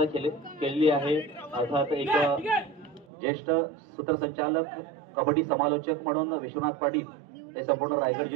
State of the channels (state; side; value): drops out; left; at 3.1 s